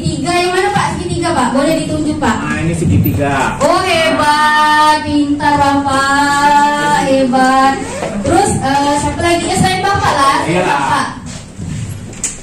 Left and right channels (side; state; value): both; identical; correlation 1.00